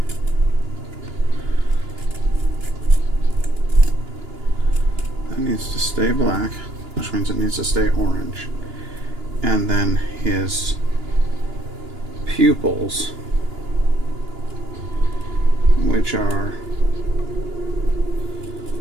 That needs to stay black, which means it needs to stay orange. And then his pupils, which are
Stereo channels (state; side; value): late; left; 2.9 ms